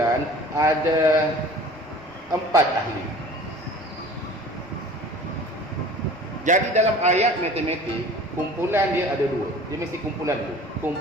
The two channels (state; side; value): normal; both; correlation 0.44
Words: ada 4 ahli. Jadi dalam ayat matematik, kumpulan dia ada 2. Dia mesti kumpulan dulu.